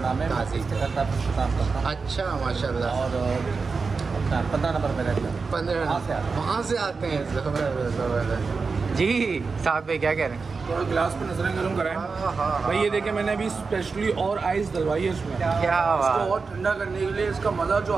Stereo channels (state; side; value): quieter; left; 4.6 dB